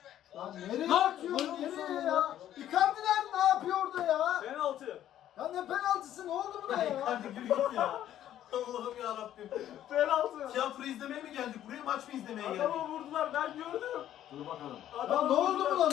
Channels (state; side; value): quieter; right; 11.7 dB